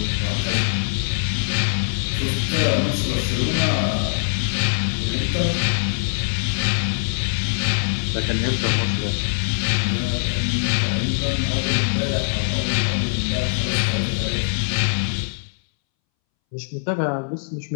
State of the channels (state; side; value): silent; right; 63 dB below the other